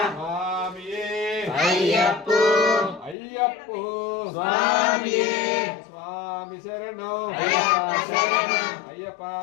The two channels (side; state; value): right; drops out; at 3.2 s